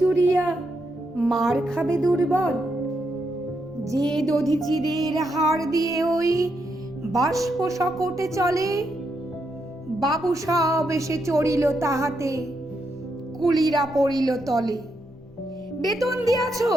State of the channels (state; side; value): normal; both; correlation 0.81